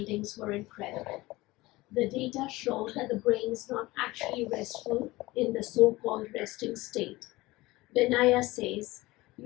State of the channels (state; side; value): quieter; right; 20.0 dB